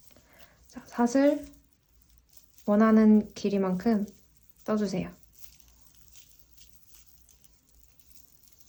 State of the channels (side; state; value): both; identical; correlation 1.00